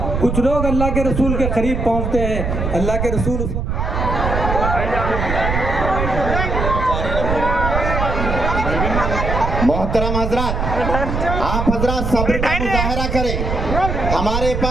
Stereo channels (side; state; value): right; noise; rumble, 2 dB below the sound